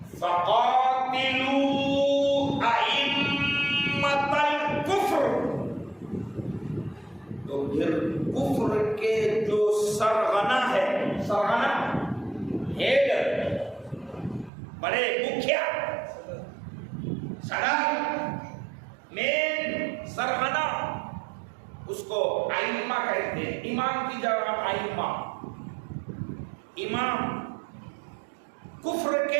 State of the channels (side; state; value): left; drops out; at 14.5 s